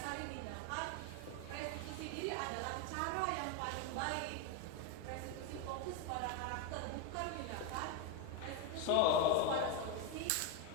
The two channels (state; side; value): different; both; correlation 0.02